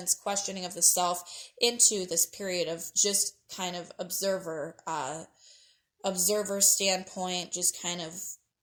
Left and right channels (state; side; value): identical; both; correlation 1.00